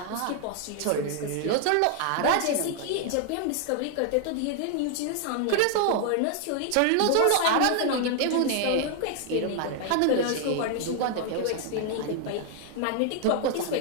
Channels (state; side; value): different; both; correlation 0.00